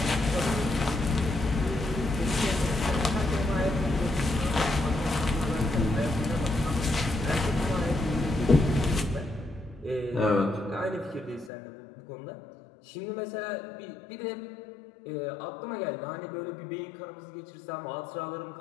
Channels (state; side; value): drops out; right; at 11.5 s